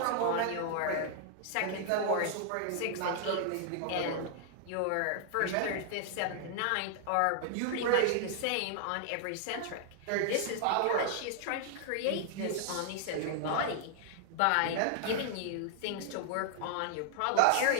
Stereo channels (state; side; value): different; both; correlation 0.00